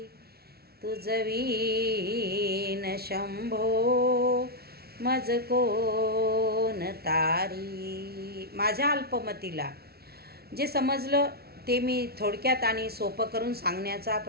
तुझवीन शंभो मज कोण तारी. माझ्या अल्पमतीला जे समजलं ते मी थोडक्यात आणि सोपं करून सांगण्याचा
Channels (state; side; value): late; left; 0.45 ms